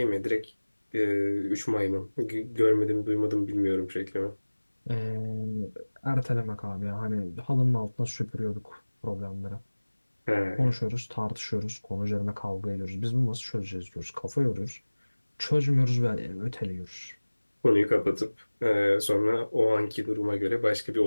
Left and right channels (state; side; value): inverted; both; correlation -1.00